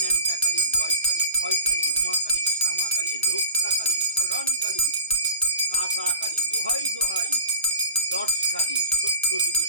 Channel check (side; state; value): both; inverted; correlation -0.31